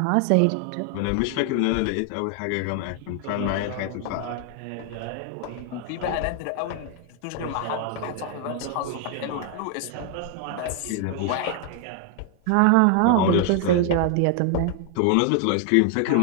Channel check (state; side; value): different; both; correlation 0.00